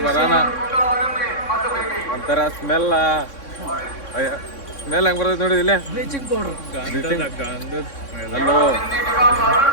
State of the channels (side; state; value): right; late; 3.6 ms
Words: ಬರೋಣ. ಒಂಥರ ಸ್ಮೆಲ್ ಹೆಂಗ್ ಬರ್ತೈತೆ ನೋಡಿ. ಇಲ್ಲಿ ಅಲ್ಲೋ